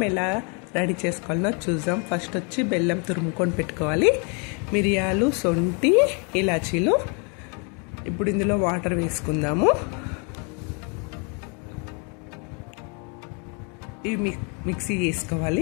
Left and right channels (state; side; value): quieter; right; 35.3 dB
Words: ఎలా రెడీ చేసుకోవాలో చూద్దాం. ఫస్ట్ వచ్చి బెల్లం తురుముకొని పెట్టుకోవాలి. మిరియాలు, సొంటి, ఇలాచీలు. ఇప్పుడు ఇందులో వాటర్ వేసుకుందాము. ఇవి మిక్సీ